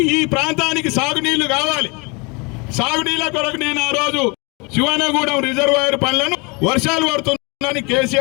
ఈ ప్రాంతానికి సాగునీళ్లు కావాలి. సాగునీళ్ళ కొరకు నేను ఆ రోజు శివానగూడెం రిజర్వాయర్ పనులను వర్షాలు పడుతుందని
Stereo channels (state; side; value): quieter; right; 29.5 dB